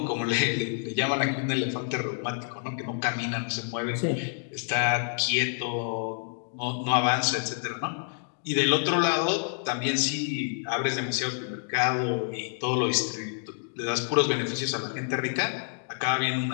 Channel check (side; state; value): right; silent; 59 dB below the other